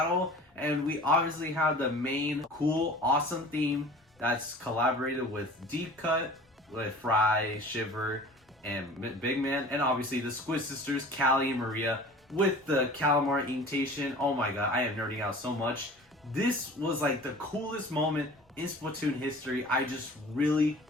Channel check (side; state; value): both; normal; correlation 0.43